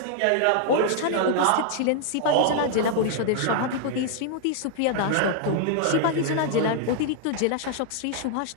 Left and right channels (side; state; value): both; different; correlation 0.00